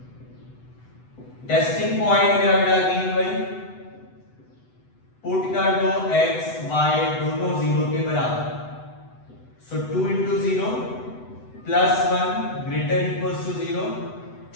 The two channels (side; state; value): right; late; 8.0 ms